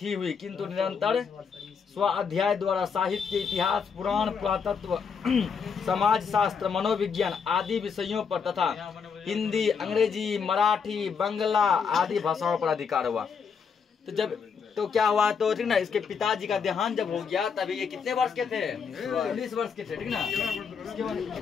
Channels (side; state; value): right; quieter; 6.1 dB